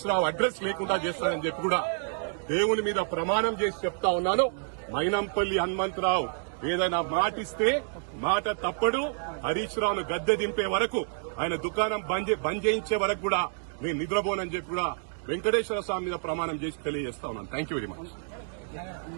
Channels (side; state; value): left; silent; digital silence